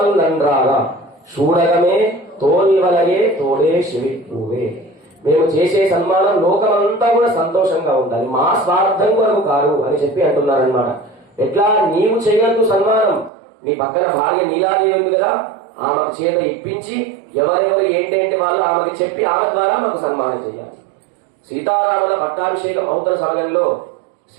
నంద్రాల చూడగమే తోల్వలగే తోడే శివిపూవే. మేము చేసే సన్మానం లోకమంతా కూడా సంతోషంగా ఉండాలి, మా స్వార్థం కొరకు కాదు అని చెప్పి అంటున్నారనమాట. ఎట్లా నీవు చేయొద్దు సన్మానం, నీ పక్కన భార్య నీలాదేవి ఉంది కదా, ఆమెకు చేత ఇప్పించి ఎవరెవరు ఏంటంటే వాళ్ళు ఆమెకి చెప్పి ఆమె ద్వారా మాకు సన్మానం చేయాలి. సీతారాముల పట్టాభిషేకం అవుతున్న సమయంలో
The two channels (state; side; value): drops out; left; at 13.3 s